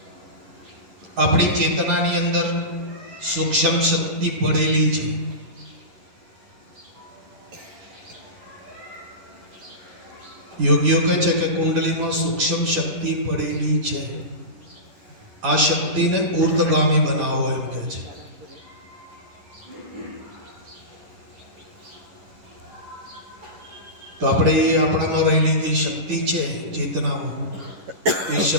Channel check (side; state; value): left; late; 10 ms